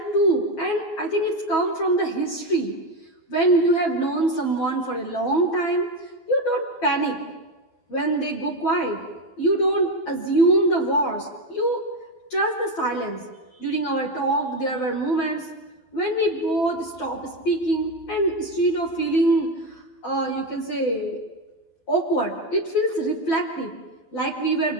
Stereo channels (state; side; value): late; right; 12 ms